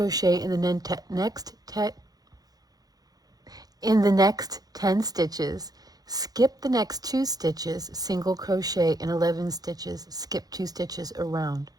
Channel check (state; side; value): late; left; 0.19 ms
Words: in the next 10 stitches. Skip the next 2 stitches, single crochet in 11 stitches, skip 2 stitches around.